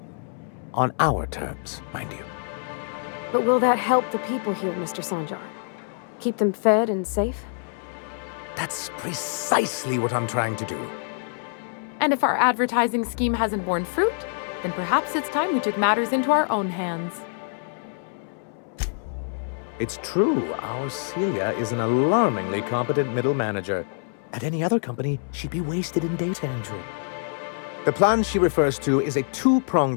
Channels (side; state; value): right; silent; 61 dB below the other